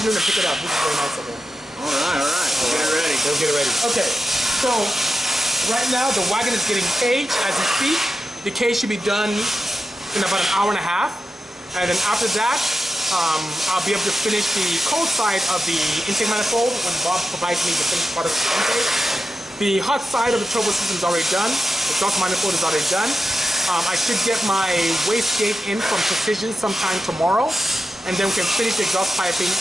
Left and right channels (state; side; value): normal; both; correlation 0.91